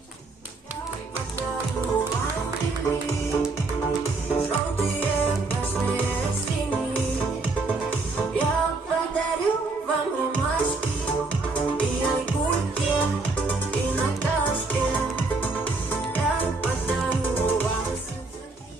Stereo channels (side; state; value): left; quieter; 3.6 dB